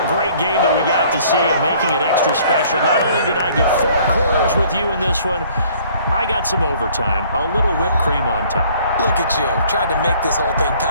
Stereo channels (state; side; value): inverted; both; correlation -0.57